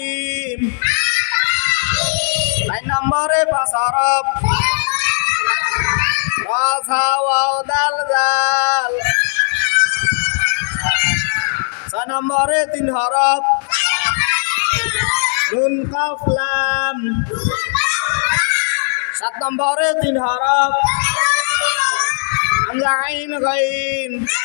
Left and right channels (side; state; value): right; silent; 68 dB below the other